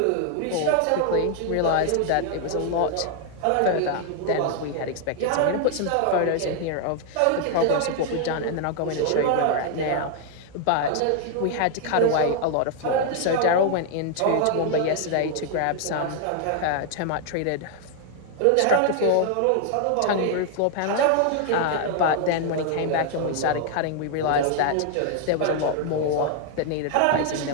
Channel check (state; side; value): different; both; correlation 0.00